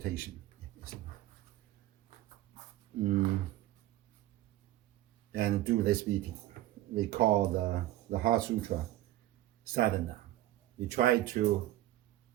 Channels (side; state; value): left; quieter; 15.2 dB